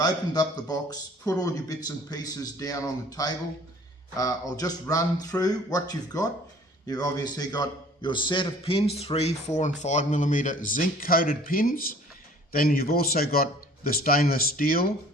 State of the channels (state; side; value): normal; both; correlation 0.52